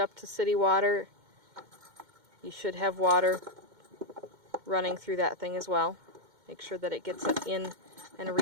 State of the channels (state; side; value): late; left; 2.1 ms